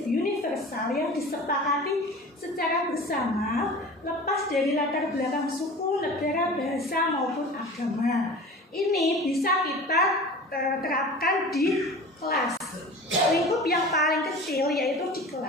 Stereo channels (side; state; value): both; normal; correlation 0.37